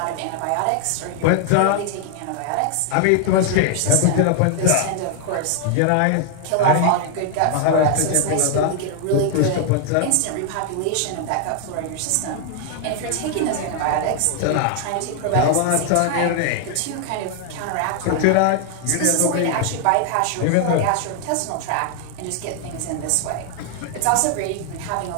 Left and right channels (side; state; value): both; different; correlation 0.00